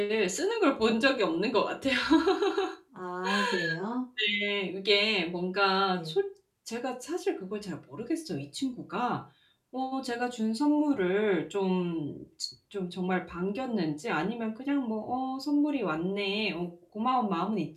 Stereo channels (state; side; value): identical; both; correlation 1.00